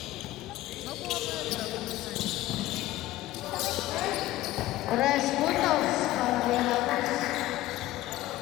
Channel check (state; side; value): quieter; right; 16.0 dB